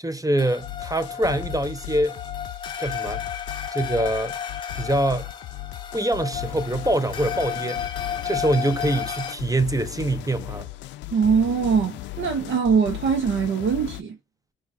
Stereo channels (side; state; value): both; normal; correlation 0.61